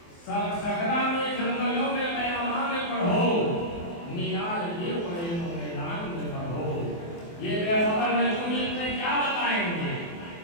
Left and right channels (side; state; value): right; late; 24 ms